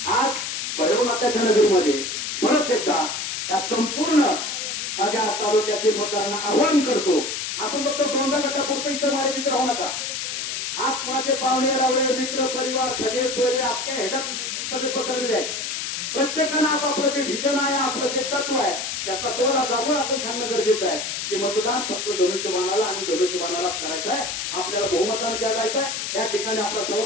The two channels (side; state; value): left; noise; hiss, 3 dB below the sound